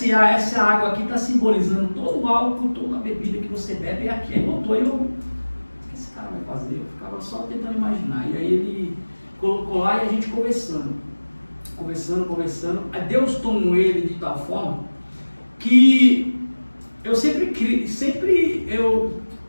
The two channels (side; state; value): both; inverted; correlation -1.00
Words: água aqui está simbolizando todo o álcool, toda a bebida que você bebe é aqui. Aí botou, o que esse cara vai fazer? Eu ficava só tentando imaginar. E aí ele colocou lá e a gente conversando. Aí Deus tomou ele de tal forma que eu